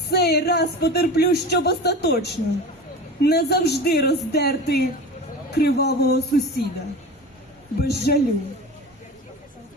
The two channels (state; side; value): normal; both; correlation 0.32